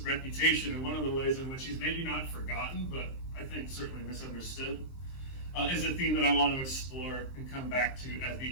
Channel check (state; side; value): late; right; 23 ms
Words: reputation, and one of the ways in which he's maybe not forgotten, but I think certainly misunderstood, is a theme that I want to explore and come back to at